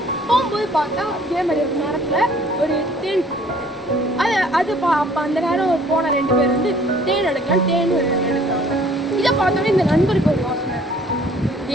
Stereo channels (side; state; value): both; normal; correlation 0.56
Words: போகும்போது பார்த்தா இதே மாதிரி ஒரு மரத்தில் ஒரு தேன் அப்போ அந்த நேரம் போன ரெண்டு பேர் வந்து தேன் எடுக்கலாம், தேன் எடுக்கிறாங்க. இதை பார்த்தோன்னே இந்த நண்பருக்கு ஒரு யோசனை,